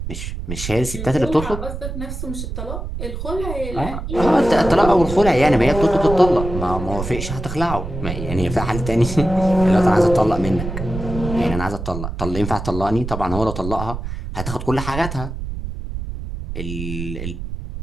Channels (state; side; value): noise; right; rumble, 7 dB below the sound